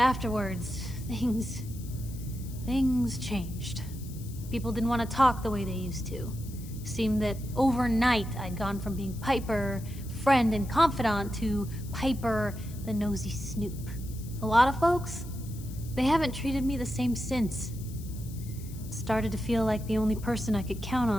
things changed. People didn't want to talk the way they used to. Seemed that overnight I'd gone from being Piper, friend and confidant, to Piper, the nosy snoop. A lot of folks, they haven't treated me the same since. It started to feel like the only person I could count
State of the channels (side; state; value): left; noise; hiss, 19 dB below the sound